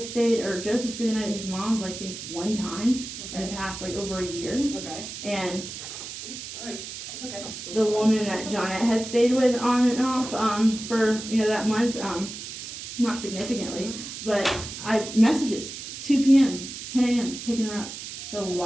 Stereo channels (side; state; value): right; noise; hiss, 9 dB below the sound